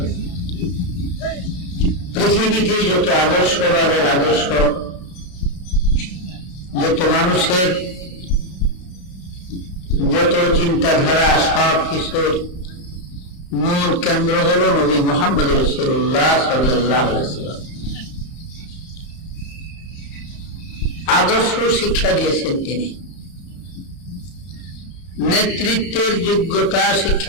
পৃথিবীতে যত আদর্শবাদের আদর্শ, যত মানুষের যত চিন্তাধারা, সব কিছুর মূল কেন্দ্র হল নবী মুহাম্মদ রাসূলুল্লাহ সাল্লাল্লাহু আলাইহি ওয়াসাল্লাম। আদর্শ শিক্ষা দিয়েছেন তিনি, নেতৃত্বের যোগ্যতা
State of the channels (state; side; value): late; right; 33 ms